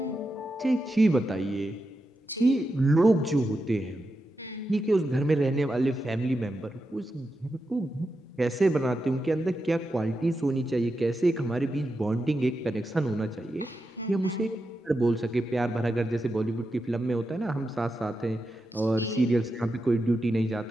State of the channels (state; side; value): normal; both; correlation 0.88